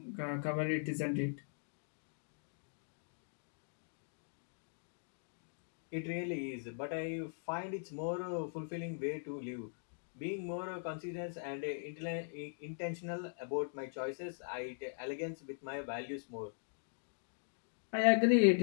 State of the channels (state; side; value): silent; right; digital silence